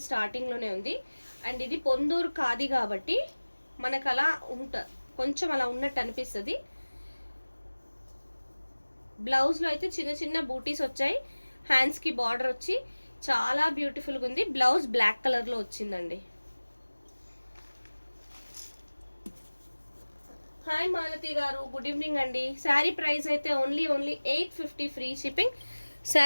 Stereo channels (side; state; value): both; inverted; correlation -1.00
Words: స్టార్టింగ్లోనే ఉంది. అండ్ ఇది పొందూరు ఖాదీ కాబట్టి మనకు అలా కొంచెం అలా ఉన్నట్టు అనిపిస్తుంది. బ్లౌజ్లో అయితే చిన్న చిన్న బూటీస్ వచ్చాయి, హ్యాండ్స్కి బార్డర్ వచ్చి చాలా బ్యూటిఫుల్గా ఉంది. బ్లౌజ్ బ్లాక్ కలర్లో వచ్చిందండి. హాయ్ మాలతి గారు, గుడ్ ఈవినింగ్ అండి. శారీ ప్రైస్ అయితే ఓన్లీ 850 ఫ్రీ షిప్పింగ్.